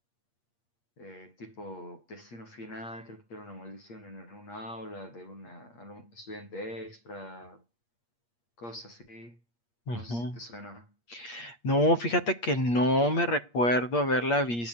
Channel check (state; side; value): late; right; 8.5 ms